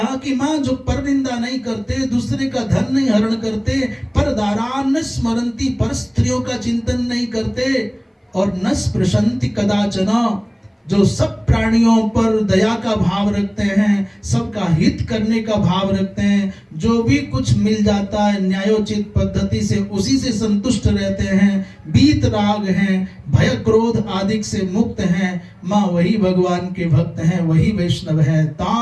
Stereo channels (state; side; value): identical; both; correlation 1.00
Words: कि मां जो परनिंदा नहीं करते, दूसरे का धन नहीं हरण करते, पर दारान स्मरंती, पर स्त्रियों का चिंतन नहीं करते, और न स्पृशन्ति कदाचन, जो सब प्राणियों पर दया का भाव रखते हैं, सबका हित करने का भाव रखते हैं, जो भी कुछ मिल जाता है न्यायोचित पद्धति से उसी से संतुष्ट रहते हैं, बीत राग हैं, भय क्रोध आदि से मुक्त हैं, माँ वही भगवान के भक्त हैं, वही वैष्णव हैं।